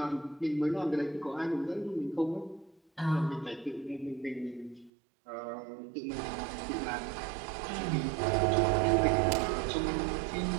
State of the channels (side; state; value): left; drops out; at 4.9 s